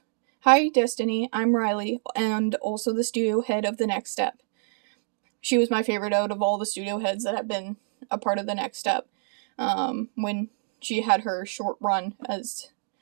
Hi, Destiny. I'm Riley, and also the studio head of the Next Step. She was my favorite out of all the studio heads that have been a part of the Next Step. When she had her short run as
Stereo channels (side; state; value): left; silent; 60 dB below the other